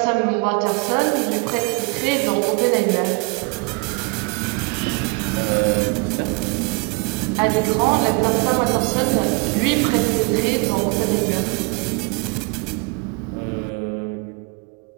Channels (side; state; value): left; quieter; 29.9 dB